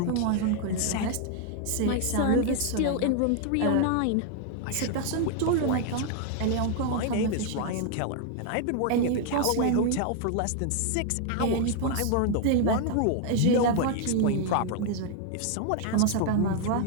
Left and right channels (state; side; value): different; both; correlation 0.00